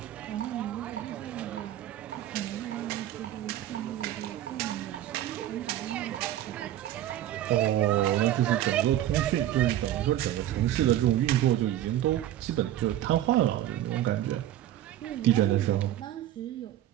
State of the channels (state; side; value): quieter; left; 12.6 dB